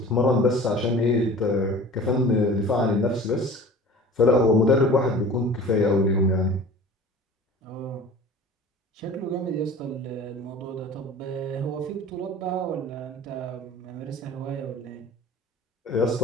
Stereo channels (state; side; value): normal; both; correlation 0.42